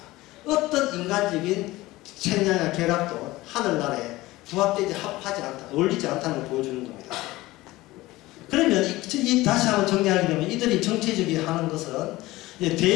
어떤 인간적인 책량이나 결합도 하늘나라에 부합되지 합하지 않다, 어울리지 않다는 걸 보여주는 겁니다. 그러면 다시 한번 정리하게 되면 이들이 정치적이 하는 것은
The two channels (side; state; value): right; quieter; 18.7 dB